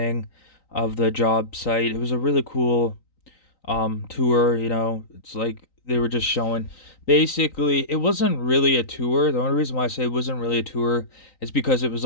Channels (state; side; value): late; right; 3.9 ms